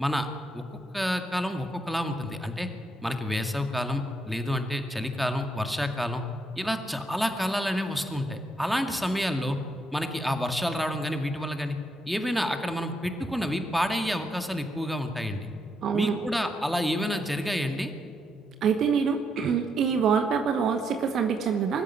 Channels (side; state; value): both; normal; correlation 0.77